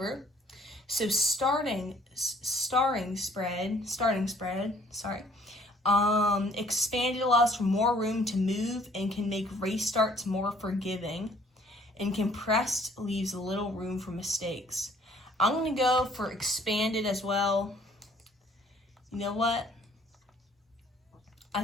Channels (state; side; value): normal; both; correlation 0.59